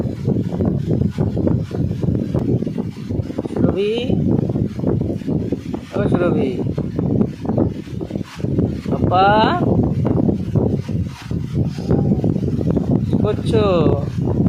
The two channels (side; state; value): both; identical; correlation 1.00